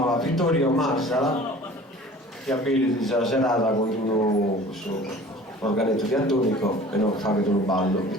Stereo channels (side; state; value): both; normal; correlation 0.45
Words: Vittorio Marsala, che abili questa serata con un organetto diatonico e non fa che un ballo.